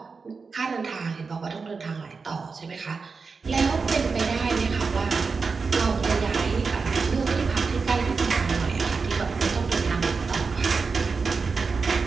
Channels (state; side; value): quieter; left; 4.8 dB